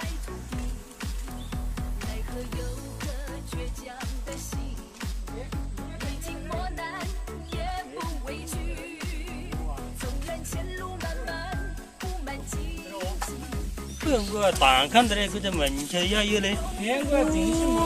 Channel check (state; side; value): identical; both; correlation 1.00